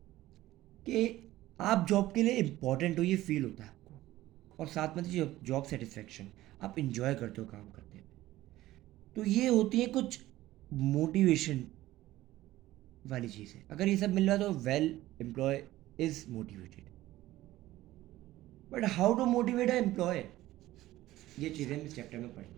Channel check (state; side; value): quieter; left; 15.9 dB